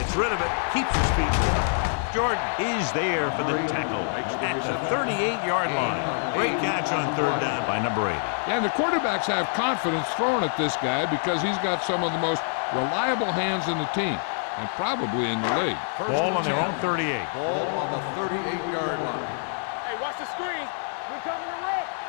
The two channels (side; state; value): right; silent; 58 dB below the other